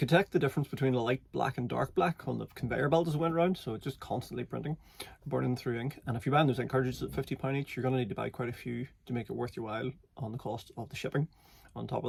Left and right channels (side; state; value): both; identical; correlation 1.00